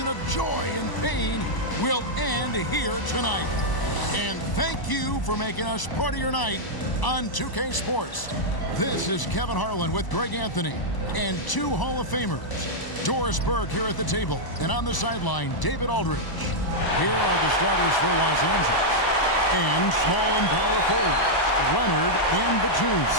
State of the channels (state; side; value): late; right; 1.0 ms